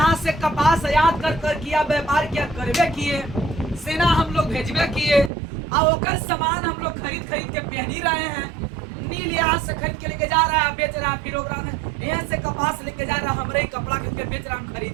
से कपास आयात कर किया, व्यापार किया, करवे किए, सेना हम लोग भेजवे किए, और ओकर सामान हम लोग खरीद के पहनी रहे हैं। नील यहाँ से खरीद के लेके जा रहा है, बेच रहा है, फिर ओकरा में यहाँ से कपास लेके जा रहा है, हमरे ही कपड़ा खरीद के बेच रहा है, हम खरीद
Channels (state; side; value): drops out; left; at 5.3 s